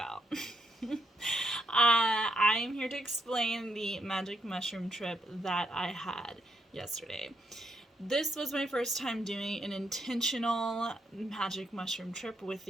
I'm here to explain the magic mushroom trip that I had yesterday. This was my first time doing an intentional magic mushroom trip with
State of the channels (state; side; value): normal; both; correlation 0.77